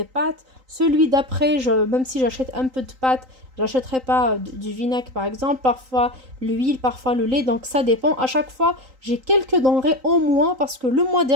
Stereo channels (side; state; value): left; late; 3.8 ms